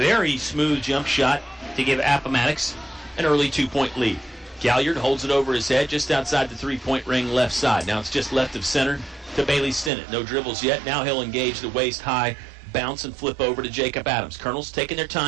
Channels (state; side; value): drops out; left; at 9.9 s